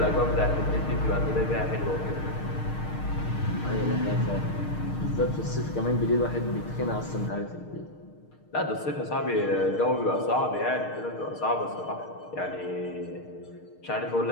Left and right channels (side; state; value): right; late; 6.5 ms